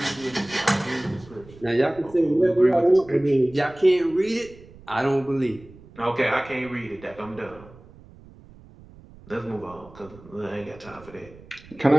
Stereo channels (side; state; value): right; noise; rumble, 22 dB below the sound